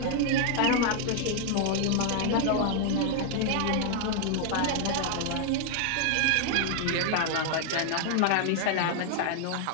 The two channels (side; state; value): both; different; correlation 0.00